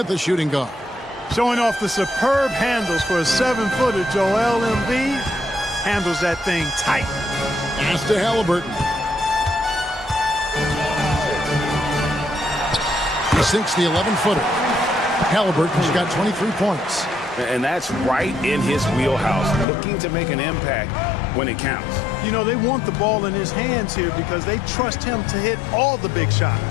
the shooting guard. Showing off the superb handles for a 7-footer, Joel Embiid handles that thing tight. Pass to Halliburton. He sinks the 11-footer. Halliburton's got 23 points. And that's right in his wheelhouse, looking to make an impact when it counts. You know, they want the ball in his hands here because they trust him to hit all the big shots.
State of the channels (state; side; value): drops out; right; at 19.7 s